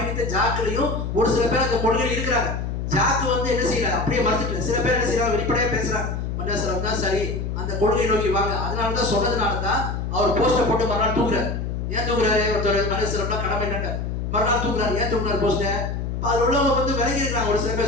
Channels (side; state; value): left; noise; hum, 3 dB below the sound